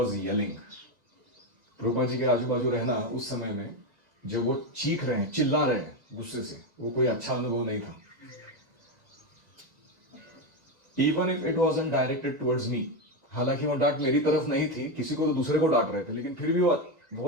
yelling. Prabhupada ji के आजू बाजू रहना उस समय में जब वो चीख रहे हैं, चिल्ला रहे हैं गुस्से से, वो कोई अच्छा अनुभव नहीं था. Even if it wasn't directed towards me, हालांकि वो डांट मेरी तरफ नहीं थी, किसी को तो दूसरे को डांट रहे थे, लेकिन फिर भी वो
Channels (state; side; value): late; left; 1.9 ms